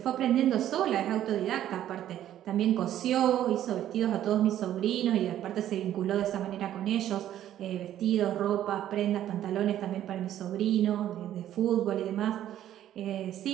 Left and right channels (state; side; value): quieter; left; 11.8 dB